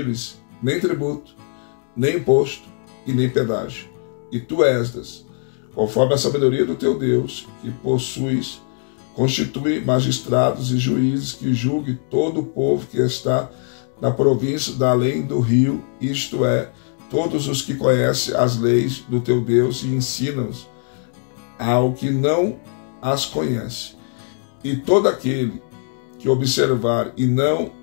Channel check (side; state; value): right; silent; 55 dB below the other